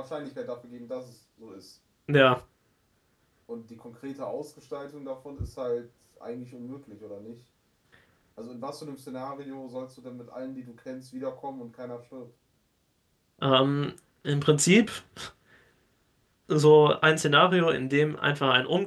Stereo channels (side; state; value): both; identical; correlation 1.00